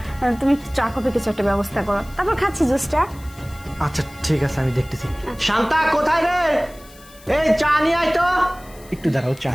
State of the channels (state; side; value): noise; left; hiss, 23 dB below the sound